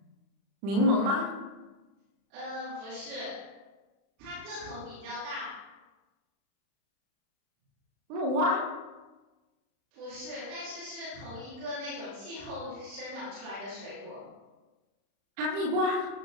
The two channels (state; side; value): late; left; 36 ms